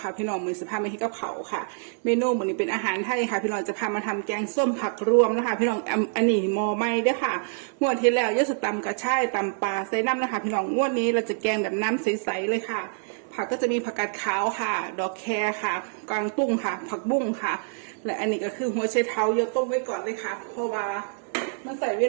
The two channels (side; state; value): left; silent; 61 dB below the other